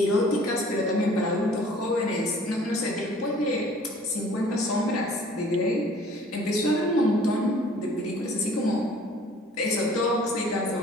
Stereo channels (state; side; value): normal; both; correlation 0.52